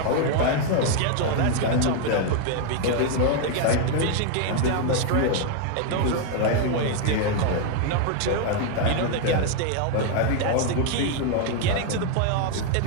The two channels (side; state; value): both; different; correlation 0.01